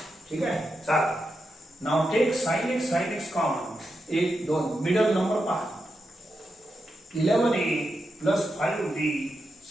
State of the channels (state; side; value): normal; both; correlation 0.87